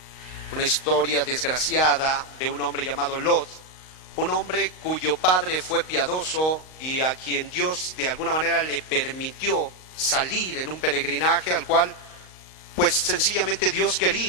una historia desgraciada de un hombre llamado Lot, un hombre cuyo padre fue piadoso y a quien Dios de alguna manera le permitió salir en un peregrinaje al cual pues sencillamente Dios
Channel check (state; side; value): late; right; 38 ms